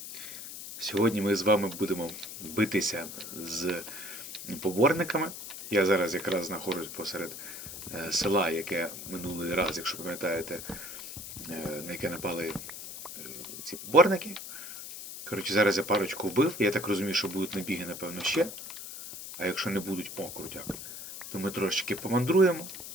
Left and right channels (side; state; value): left; noise; hiss, 10 dB below the sound